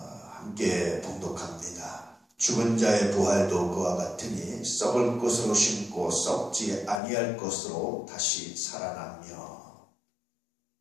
봉독합니다. 죽은 자의 부활도 그와 같으니 썩을 것으로 심고 썩지 아니할 것으로 다시 살아나며.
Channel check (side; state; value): right; drops out; at 7.0 s